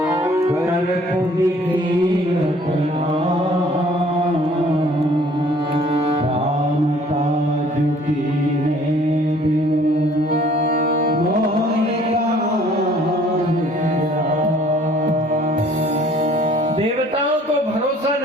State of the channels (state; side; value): normal; both; correlation 0.56